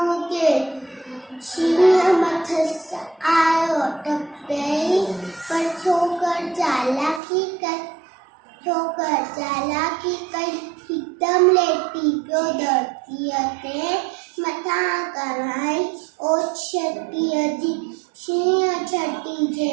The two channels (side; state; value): left; drops out; at 7.2 s